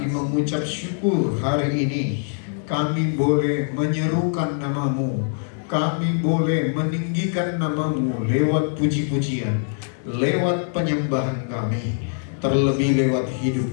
mengucap syukur hari ini kami boleh menyerukan nama-Mu, kami boleh meninggikan nama-Mu lewat puji-pujian, lewat penyembahan kami, terlebih lewat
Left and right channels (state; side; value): silent; right; digital silence